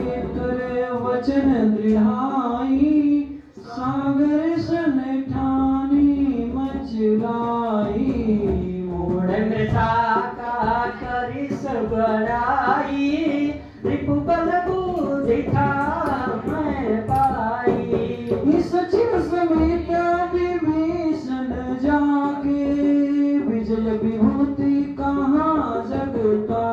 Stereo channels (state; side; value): identical; both; correlation 1.00